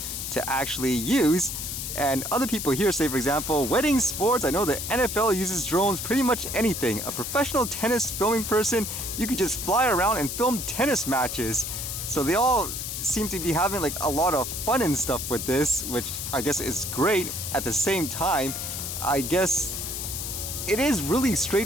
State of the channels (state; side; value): noise; left; hiss, 5 dB below the sound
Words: to actually use. And other people here say, for example, wedding, sports. I know the NFL uses drones pretty much anything. A professional tennis filming person, you could just fly around and film tennis matches. So they all seem to be having like a lot of fun and stuff with this, which I guess is great. At the same time, I guess it is really